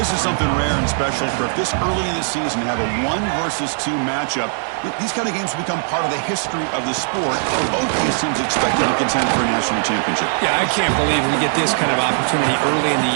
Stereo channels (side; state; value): left; silent; digital silence